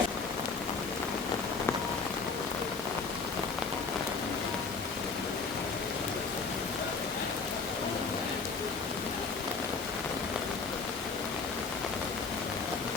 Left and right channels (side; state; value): right; quieter; 4.6 dB